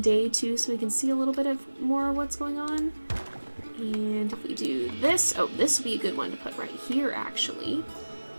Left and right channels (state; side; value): inverted; both; correlation -1.00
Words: too, so we can see a little bit of more of what's going on. And if we do this, oh, this would be a good one to put right here actually.